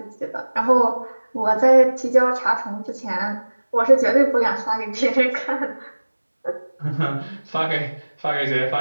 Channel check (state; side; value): inverted; both; correlation -1.00